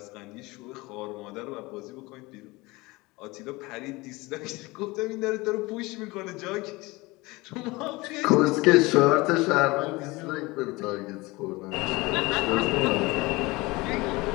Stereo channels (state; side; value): quieter; right; 22.5 dB